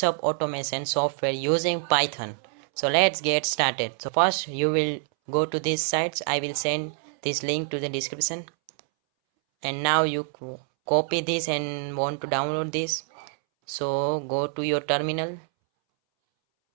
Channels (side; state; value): left; silent; 61 dB below the other